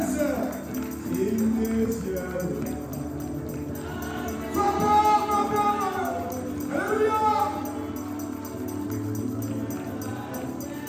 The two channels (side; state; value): both; identical; correlation 1.00